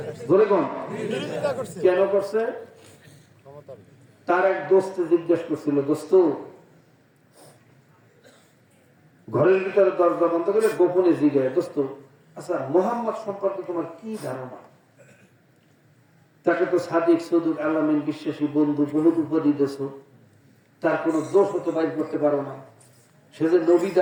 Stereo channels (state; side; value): identical; both; correlation 1.00